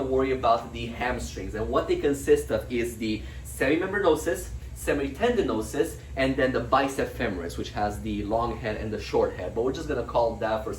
worry about the hamstrings, and what they consist of is the semimembranosus, semitendinosus, and then the bicep femoris, which has the long head and the short head. But we're just gonna call that, for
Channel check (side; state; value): both; identical; correlation 1.00